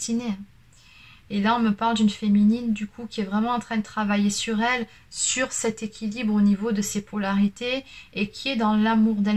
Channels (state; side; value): identical; both; correlation 1.00